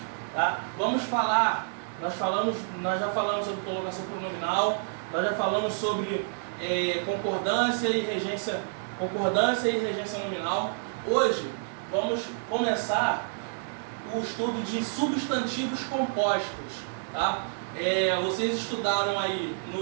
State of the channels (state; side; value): silent; left; digital silence